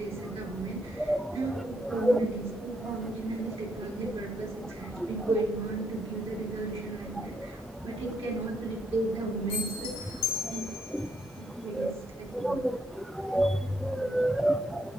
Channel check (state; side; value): normal; both; correlation 0.74